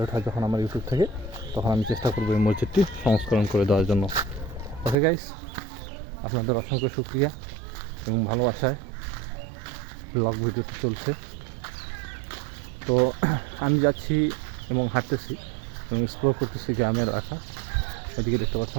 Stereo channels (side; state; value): left; drops out; at 5.0 s